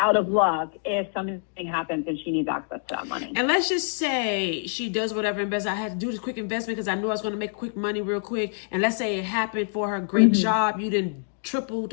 of luck if something happens and she needs access to that money. And let's just say she does whatever investment. I had to do this quick investment because I knew I was going to make quick money real quick. And let's say it happened for her great job. You didn't tripled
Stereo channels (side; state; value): right; silent; digital silence